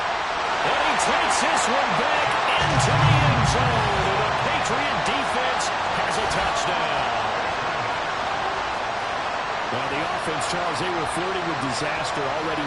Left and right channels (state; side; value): identical; both; correlation 1.00